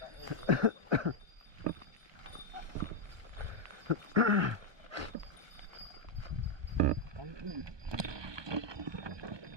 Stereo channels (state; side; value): late; left; 1.2 ms